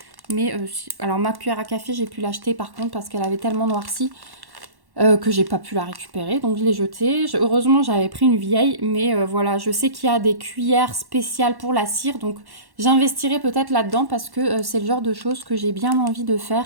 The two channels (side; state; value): left; late; 1.1 ms